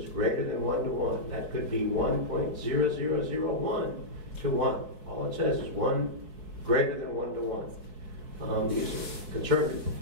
greater than 1 to 1. That could be 1.0001 to 1. All it says is greater than 1 to 1. These are conservative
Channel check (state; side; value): late; left; 4.6 ms